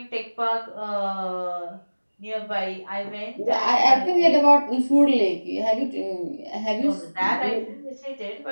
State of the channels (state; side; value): inverted; both; correlation -1.00